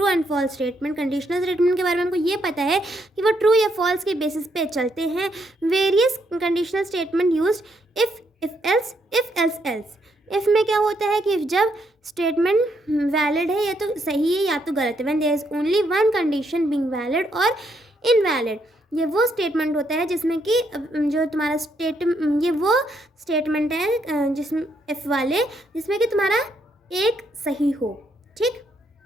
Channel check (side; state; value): both; normal; correlation 0.75